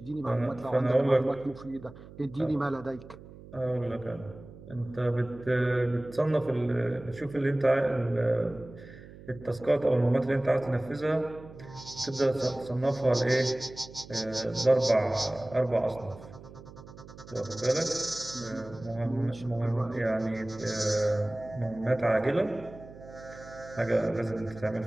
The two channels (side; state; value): right; noise; hum, 18 dB below the sound